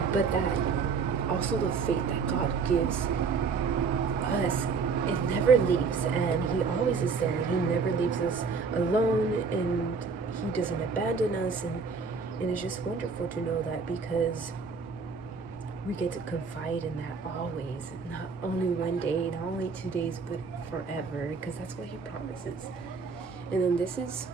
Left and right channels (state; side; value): quieter; left; 5.1 dB